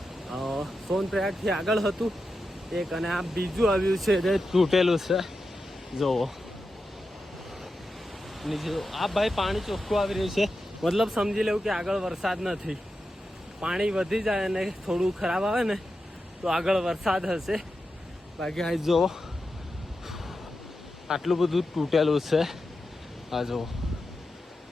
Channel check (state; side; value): normal; both; correlation 0.89